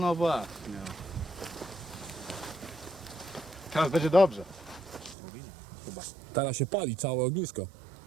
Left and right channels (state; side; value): drops out; left; at 5.2 s